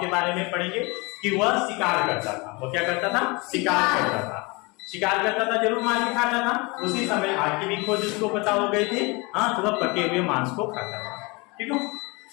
के बारे में पढ़ेंगे कि वह शिकार करता था। वो क्या करता था? शिकार करता था। शिकार करता था, जरूर मार के खाता था। उसी समय आग की भी खोज उसको पता हो गई थी। हाँ, तो वह पके हुए मांस को खाता था। ठीक है।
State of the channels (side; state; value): right; quieter; 26.9 dB